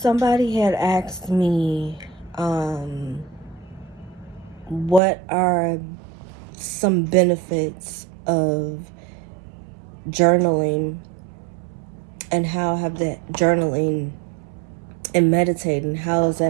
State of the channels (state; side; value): drops out; left; at 5.0 s